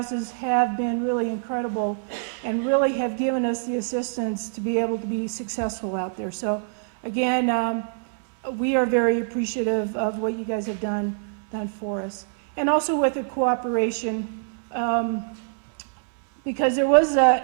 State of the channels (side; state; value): left; silent; 62 dB below the other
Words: have been really incredible and really have given us the assistance to be able to be successful out there. So again, we are very appreciative of what you guys have done for us. And also with the cooperation, because it was